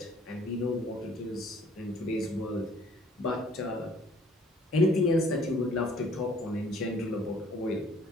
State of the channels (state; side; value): normal; both; correlation 0.57